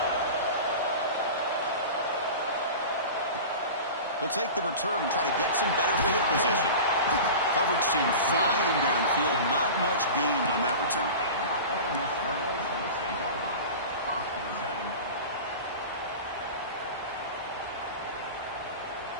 He'll take the return and try to get some better field position. Coverage team flying downfield. Not much gained on that return.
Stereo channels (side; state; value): both; inverted; correlation -0.33